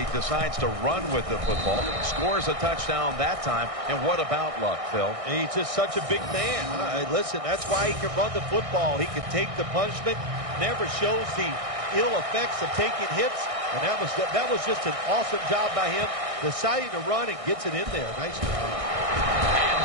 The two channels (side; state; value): left; late; 1.6 ms